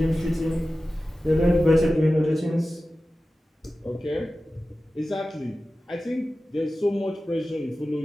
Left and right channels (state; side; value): normal; both; correlation 0.95